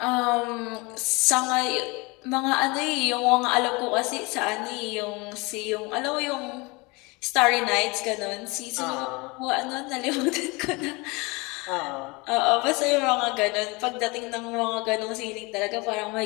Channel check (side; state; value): right; quieter; 26.2 dB